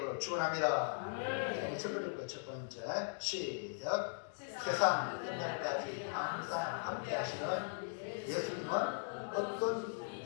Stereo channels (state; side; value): silent; right; digital silence